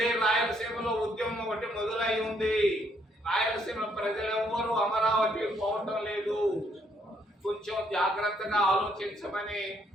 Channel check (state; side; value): normal; both; correlation 0.70